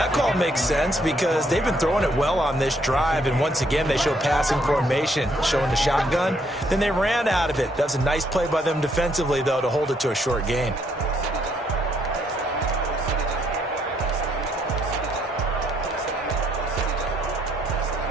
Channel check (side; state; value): both; normal; correlation 0.71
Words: call makes sense because they've been throwing it well on this drive, and once again they show passing formation, showing the shotgun. Then they ran out of it. That was a nice play by them defensively, though, to hold it to a short gain.